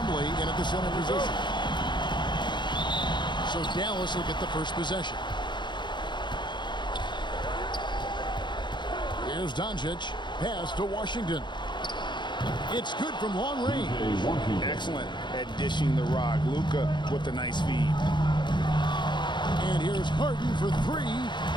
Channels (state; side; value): late; right; 0.22 ms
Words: in at the center position. So Dallas will get the first possession. Here's Doncic. Pass to Washington. It's good from long range. Excellent at dishing the rock. Luka with a nice feed. And here's Harden for three.